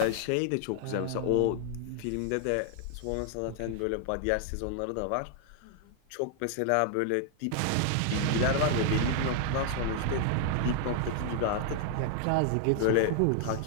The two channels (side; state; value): both; different; correlation 0.00